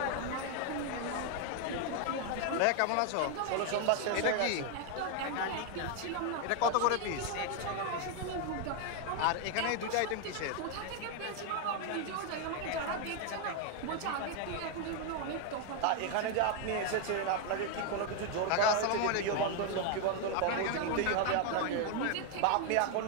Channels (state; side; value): different; both; correlation 0.01